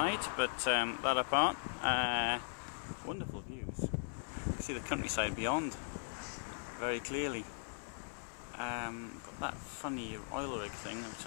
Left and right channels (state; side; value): silent; right; 52 dB below the other